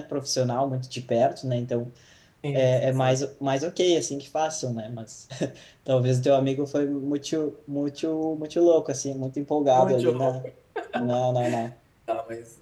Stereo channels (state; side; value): identical; both; correlation 1.00